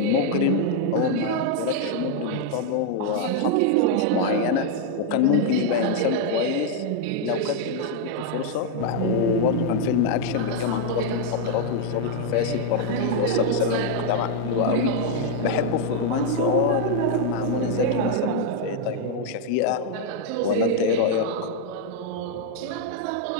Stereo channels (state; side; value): different; both; correlation 0.00